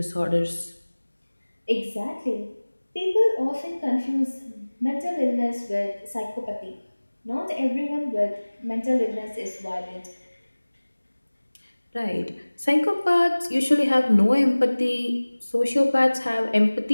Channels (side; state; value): both; inverted; correlation -1.00